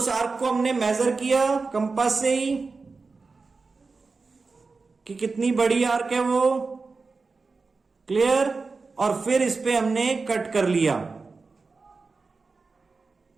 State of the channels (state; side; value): quieter; left; 4.2 dB